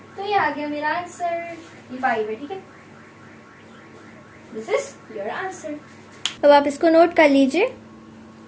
तो ये आ गया मेरा आंसर, ये 5 है, ठीक है, दिस इज योर आंसर। अब आप इसको नोट कर लीजिए।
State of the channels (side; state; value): both; identical; correlation 1.00